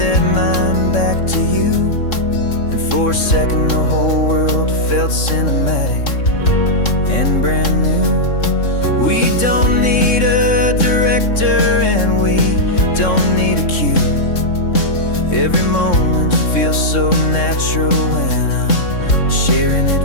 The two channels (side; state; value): right; late; 3.6 ms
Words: mine back to you. And for a second the whole world felt cinematic and brand new. We don't need a director and we don't need a cue. Every moment feels so natural when I'm sharing